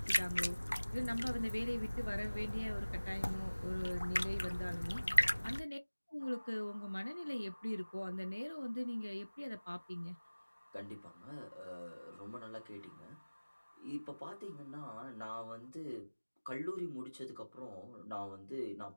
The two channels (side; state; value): both; inverted; correlation -1.00